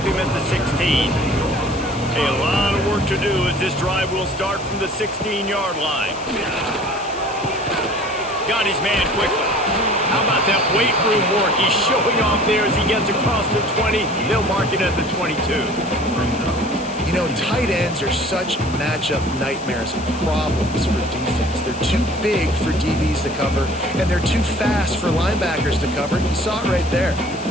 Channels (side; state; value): left; noise; hiss, 16 dB below the sound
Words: him at the 16. A lot of work to do as this drive will start from the 16-yard line. Got his man quickly. How about that weight room work? He's showing off there as he gets across the 20. They'll mark it at the 22. You know, tight ends are such matchup nightmares and problems for defense. They're too big for DBs to cover, and they're too fast for linebackers to cover. You saw it right there.